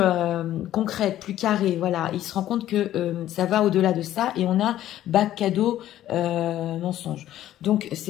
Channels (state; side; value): quieter; right; 12.8 dB